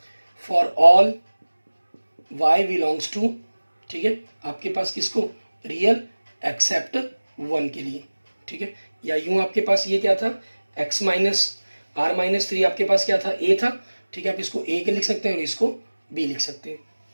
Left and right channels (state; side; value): inverted; both; correlation -1.00